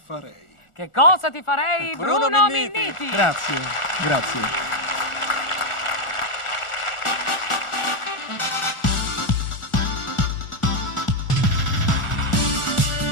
farei? Che cosa ti farei, Bruno Minniti? Grazie, grazie.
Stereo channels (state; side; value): late; right; 1.4 ms